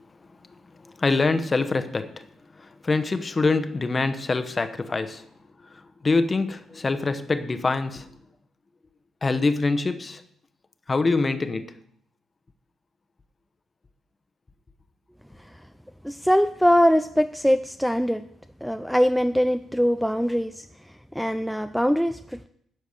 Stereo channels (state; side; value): normal; both; correlation 0.96